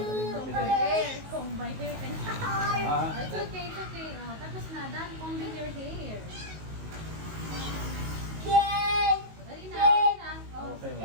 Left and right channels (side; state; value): left; late; 19 ms